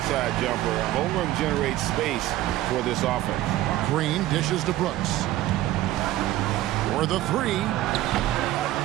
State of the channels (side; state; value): left; quieter; 15.2 dB